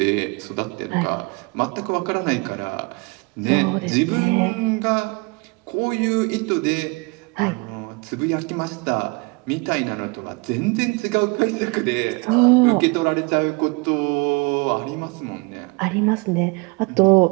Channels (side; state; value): left; quieter; 28.6 dB